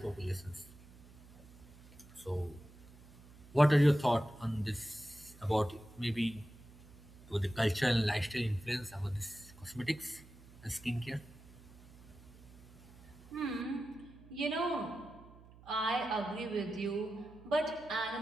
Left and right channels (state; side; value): noise; right; hum, 22 dB below the sound